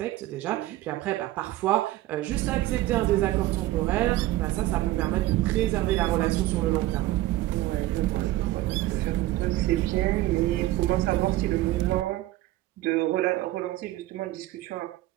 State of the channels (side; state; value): left; quieter; 16.2 dB